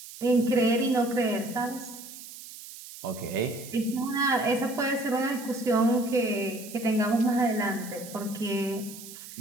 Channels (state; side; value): noise; right; hiss, 14 dB below the sound